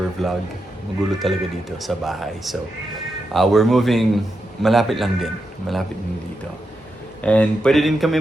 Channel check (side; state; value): both; normal; correlation 0.86